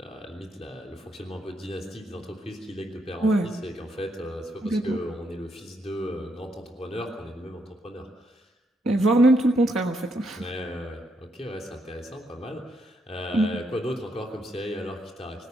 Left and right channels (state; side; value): normal; both; correlation 0.77